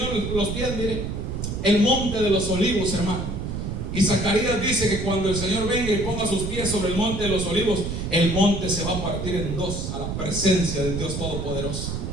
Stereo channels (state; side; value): noise; right; rumble, 4 dB below the sound